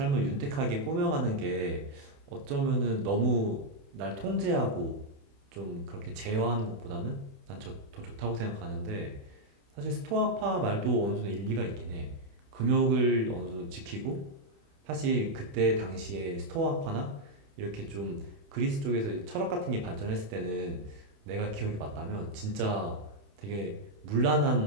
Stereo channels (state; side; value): late; left; 28 ms